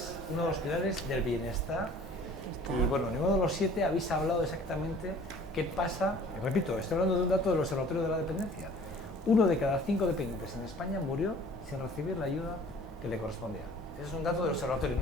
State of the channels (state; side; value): normal; both; correlation 0.50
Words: uno de los pilares del bienestar. Y bueno, ninguno de los 7 habéis hablado exactamente ¿Qué pasa? Repito, estoy hablando de un dato del Observatorio de la Dependencia. 1 de cada 5 dependientes en España murió sin recibir la ayuda que le correspondía. Ese es un dato del observatorio,